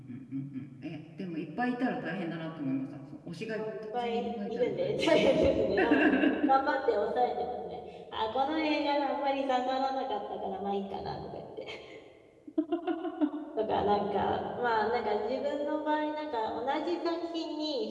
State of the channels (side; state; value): both; identical; correlation 1.00